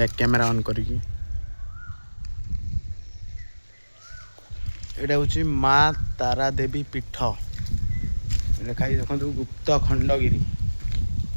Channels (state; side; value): inverted; both; correlation -1.00